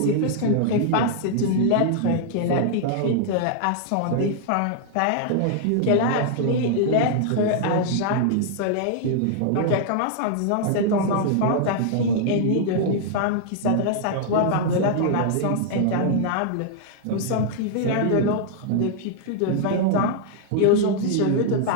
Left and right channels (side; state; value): both; different; correlation -0.01